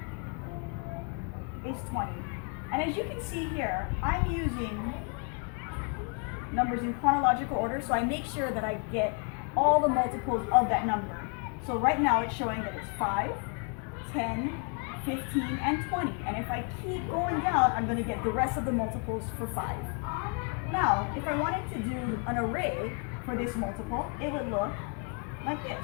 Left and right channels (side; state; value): right; quieter; 36.2 dB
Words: is 20. And as you can see here, I'm using numbers in chronological order, so I make sure that I get all the multiples of that number. So right now it's showing that it's 5, 10, 15, and 20. And if I keep going down, I'm going to get the rest of the multiples for 5. Now, if I wanted to do an array for this multiple, it would look like